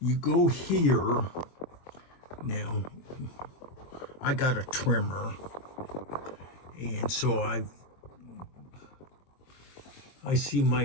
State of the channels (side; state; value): right; late; 23 ms